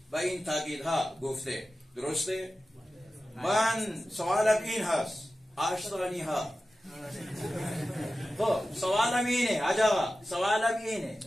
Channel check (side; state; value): both; normal; correlation 0.94